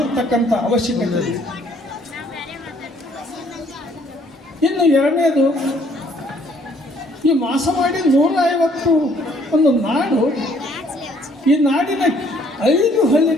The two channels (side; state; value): both; normal; correlation 0.63